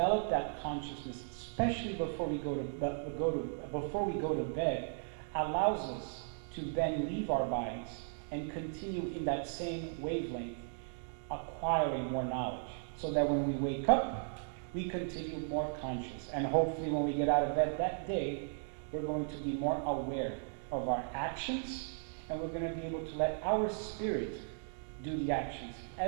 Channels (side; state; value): left; silent; digital silence